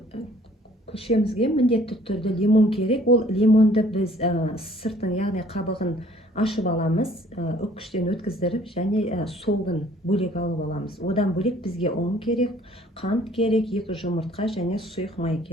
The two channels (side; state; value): both; normal; correlation 0.57